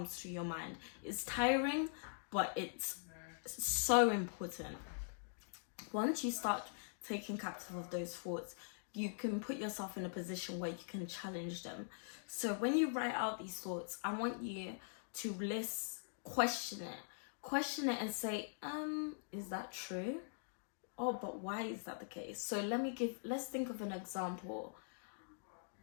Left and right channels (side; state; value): right; silent; digital silence